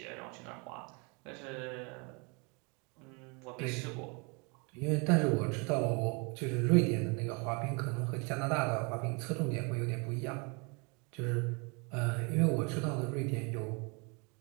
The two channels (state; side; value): quieter; left; 31.5 dB